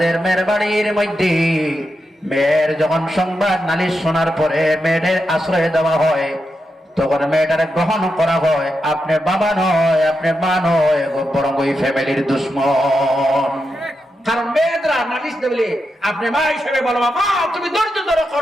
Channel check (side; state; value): both; normal; correlation 0.87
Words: মেয়ের বাড়ির মধ্যে মেয়ের যখন সংবাদ নালিশ শোনার পরে মেয়েদের আশ্রয় দেওয়া হয়, তখন মেয়েটারে গ্রহণ করা হয়, আপনি বাবা নয়, আপনি মা নয়, বরং ওই ফ্যামিলির দুশ্মন। কারণ মেয়েরা নালিশ দেবে, আপনি মা হিসেবে বলো মা তুমি ধৈর্য ধরো